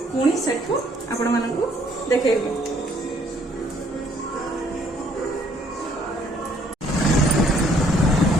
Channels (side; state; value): both; normal; correlation 0.64